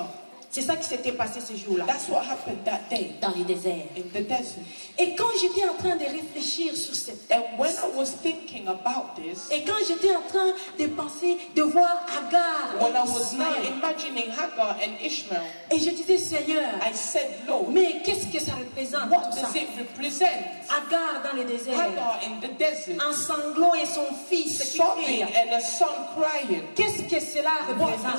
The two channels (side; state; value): both; inverted; correlation -1.00